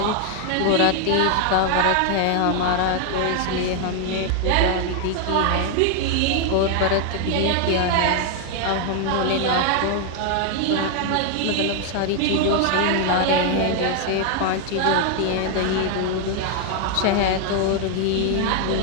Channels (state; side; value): different; both; correlation 0.01